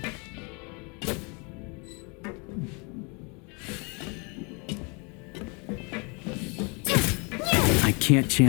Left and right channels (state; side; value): quieter; right; 32.1 dB